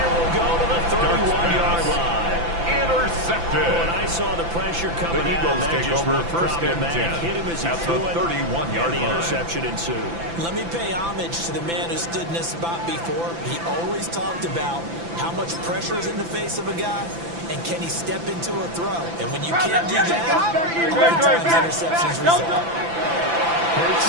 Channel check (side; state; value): left; late; 5.9 ms